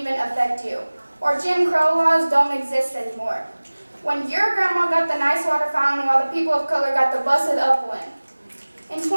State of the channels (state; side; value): inverted; both; correlation -1.00